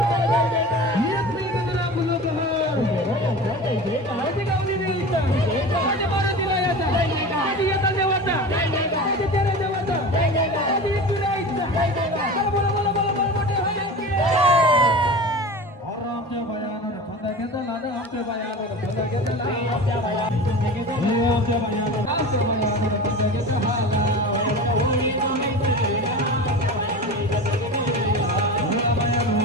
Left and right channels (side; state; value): both; normal; correlation 0.32